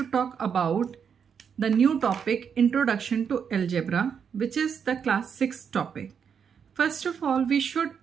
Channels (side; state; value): left; quieter; 7.1 dB